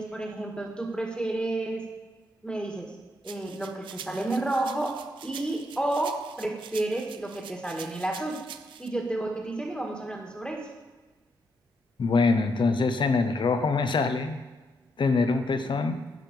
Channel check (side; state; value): both; normal; correlation 0.78